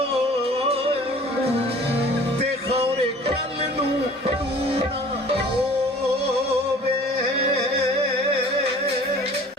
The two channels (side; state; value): both; normal; correlation 0.47